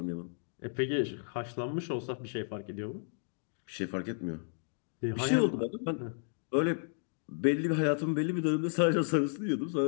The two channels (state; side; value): silent; right; digital silence